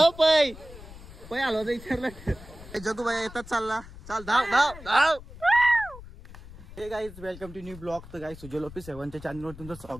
पै पै आलो तर विचारलं. जगू बाई येतात चालला. चाल धाव धाव धाव. Hey guys welcome to new blog. तर गाईज सुजल ऑफिस 7च्या चॅनलवर तुमचं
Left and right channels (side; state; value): left; noise; rumble, 17 dB below the sound